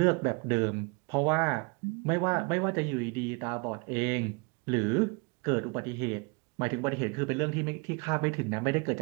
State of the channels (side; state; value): left; quieter; 30.6 dB